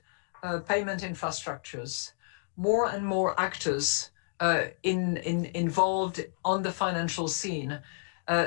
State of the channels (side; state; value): right; silent; digital silence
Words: payment infrastructures, more and more actors involved on the financial scene,